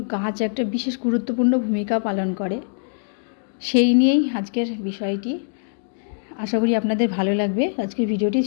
গাছ একটা বিশেষ গুরুত্বপূর্ণ ভূমিকা পালন করে। সেই নিয়েই আজকের বিষয়টি। আশা করি আপনাদের ভালো লাগবে আজকের ভিডিওটি।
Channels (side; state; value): right; silent; digital silence